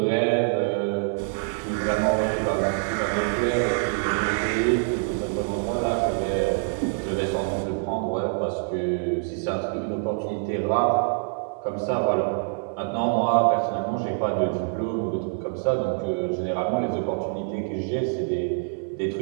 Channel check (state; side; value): silent; left; 61 dB below the other